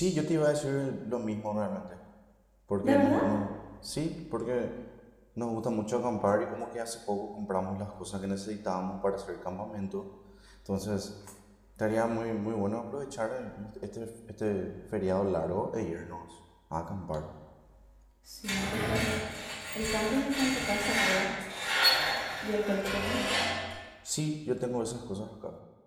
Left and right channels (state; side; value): identical; both; correlation 1.00